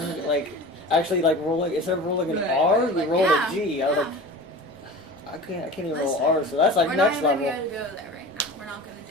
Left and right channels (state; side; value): normal; both; correlation 0.35